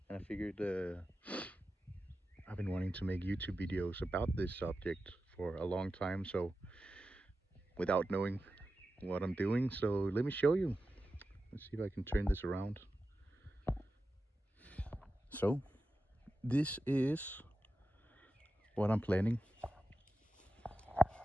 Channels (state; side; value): normal; both; correlation 0.92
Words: and I figured I've been wanting to make YouTube videos about this subject for a long time. So without knowing what I'm doing, so let me show you. Let's see if I can turn this around. So this is what I'm planning.